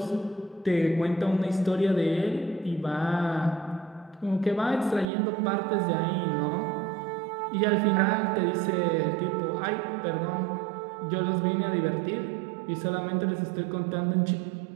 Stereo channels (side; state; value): left; drops out; at 5.1 s